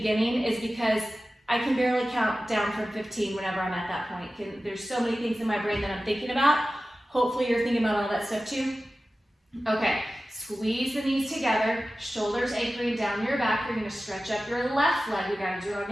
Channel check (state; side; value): normal; both; correlation 0.95